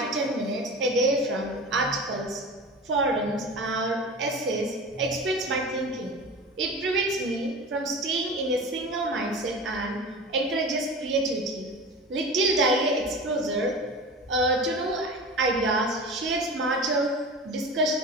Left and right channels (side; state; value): both; normal; correlation 0.33